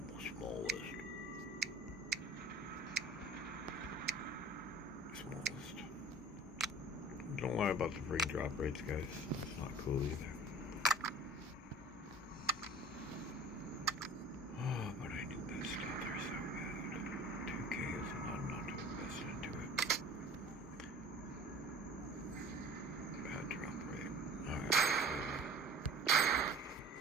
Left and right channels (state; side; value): normal; both; correlation 0.44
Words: smallest. Don't worry about the freaking drop rates, guys. It's not cool either. Oh, but I do this stuff there so bad. 2K is not enough to invest into it. Bad drop rate. Alright.